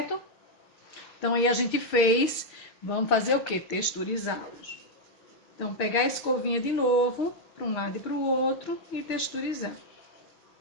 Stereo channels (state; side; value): late; right; 6.3 ms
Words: Então, aí a gente fez, vamos fazer o quê? Texturizá-los. Então, pegar a escovinha de novo, para um lado e para o outro, e texturizar.